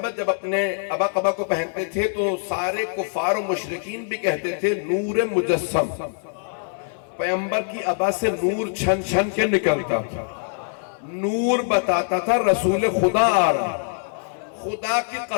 جب اپنے ابا قبا کو پہنتے تھے تو سارے کفار و مشرکین بھی کہتے تھے نور مجسم۔ پیغمبر کی ابا سے نور چھن چھن کے نکلتا تھا، نور بتاتا تھا رسول خدا آ رہا۔ خدا کی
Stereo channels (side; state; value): right; silent; 63 dB below the other